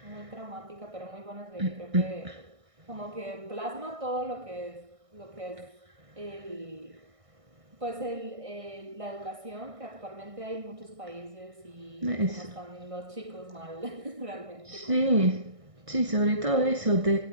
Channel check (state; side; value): late; left; 1.6 ms